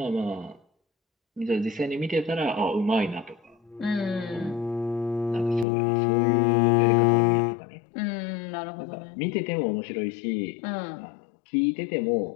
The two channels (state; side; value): drops out; right; at 5.7 s